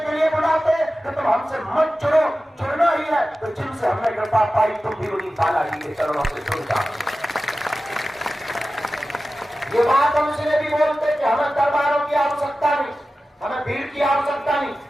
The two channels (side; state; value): both; normal; correlation 0.94